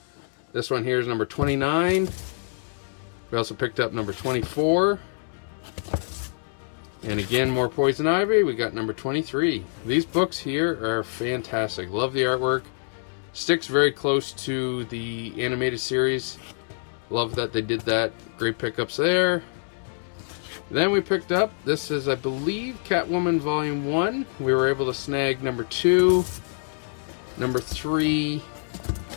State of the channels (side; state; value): right; silent; digital silence